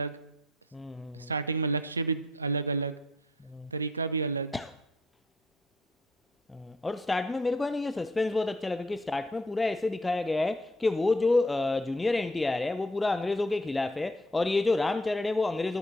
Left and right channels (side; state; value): both; normal; correlation 0.64